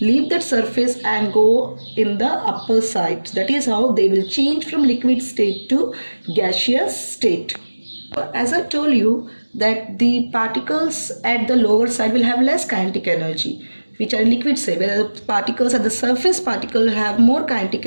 leave that surface and go in the upper side. That is how they will change from liquid state to gaseous state. As I told you that the particles at the lower side will have less kinetic energy, which are liquid state, where the particles at the surface particle have more kinetic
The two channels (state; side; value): inverted; both; correlation -1.00